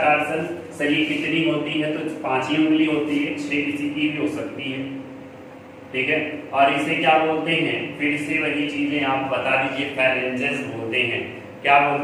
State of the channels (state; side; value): identical; both; correlation 1.00